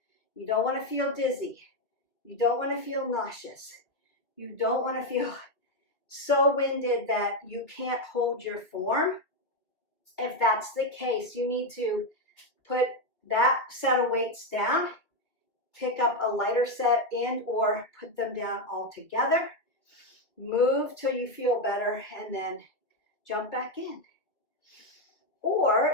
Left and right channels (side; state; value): right; late; 2.2 ms